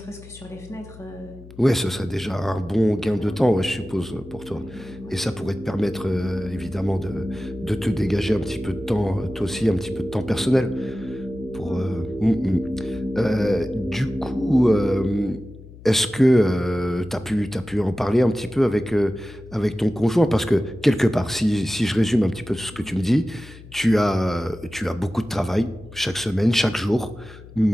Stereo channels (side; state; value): left; noise; hum, 18 dB below the sound